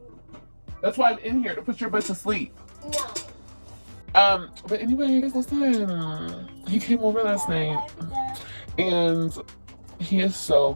That's why I'm in here, to put your butt to sleep. No. But anyway, guys, listen. He came over last night and he is so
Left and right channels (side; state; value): both; inverted; correlation -1.00